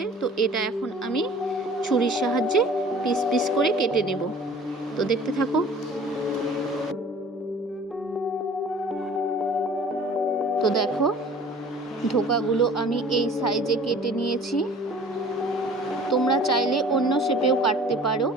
তো এটা এখন আমি ছুরির সাহায্যে পিস পিস করে কেটে নেব। তো দেখতে থাকো। তো দেখো, ধোকাগুলো আমি এই সাইজে কেটে নিয়েছি। তোমরা চাইলে অন্য শেপেও কাটতে পারো,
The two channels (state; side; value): normal; both; correlation 0.47